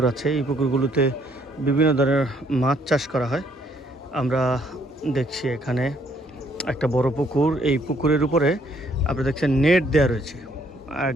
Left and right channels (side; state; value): both; normal; correlation 0.67